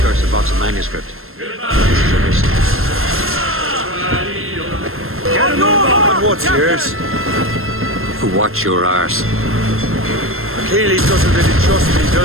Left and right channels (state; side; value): late; left; 0.61 ms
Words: box of manuscript. This is your mission. Get him on what's yours? Watch your arse. Achilles doesn't really trust me,